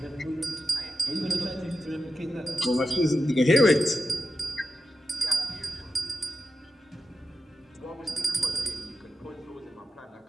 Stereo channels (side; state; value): both; normal; correlation 0.91